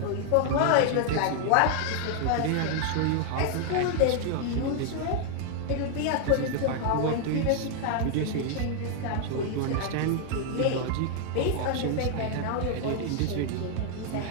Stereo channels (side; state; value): both; different; correlation 0.00